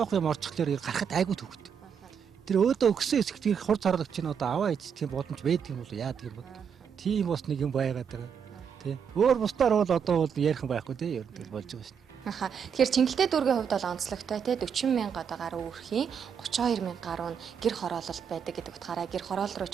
юм орчихлоор гарахад айгүй төвхт. Тэр өөдөө өгсөн хэсэгт хорт харгалж чинь одоо аваа ичдэг боломж байдаг юм бол яадаг юм бол. Тийм бас нэг юм байгаад байгаа. Тий. Өөр бусдаар бол одоо бол ярих юм байхгүй тий. Ер нь болж байгаа шүү. Аха. Тэгэхээр Чингэлтэй дүүргийн хувьд бол онцлогтой тий 40 мянга одоо гаруй өрхийн 32 мянга гаруй нь гэр хороололт байдаг гэдэг утгаараа гэр хороол руу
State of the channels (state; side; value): quieter; left; 7.2 dB